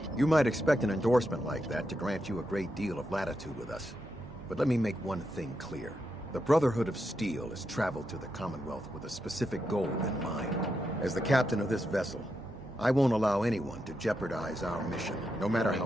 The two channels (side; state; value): both; normal; correlation 0.84